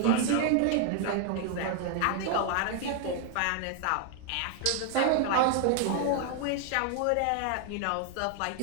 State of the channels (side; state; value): both; different; correlation 0.00